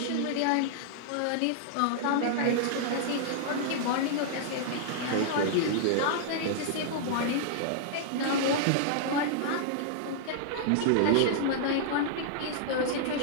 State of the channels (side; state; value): both; different; correlation -0.01